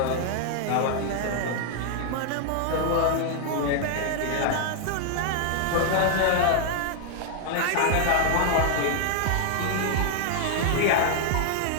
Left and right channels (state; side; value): different; both; correlation 0.00